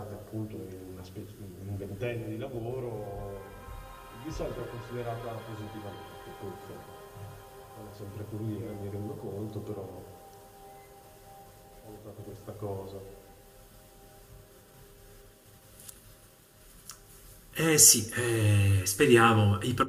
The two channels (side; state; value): both; identical; correlation 1.00